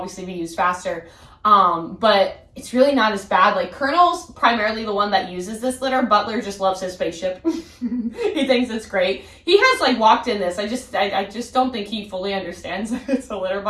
be used faster. But it's really not as bad. Like Colonel's primarily the one that uses this litter. Butler just loves his spaceship. He thinks it's great. He has like walked in this. I just don't think he fully understands that it's a litter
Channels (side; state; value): both; identical; correlation 1.00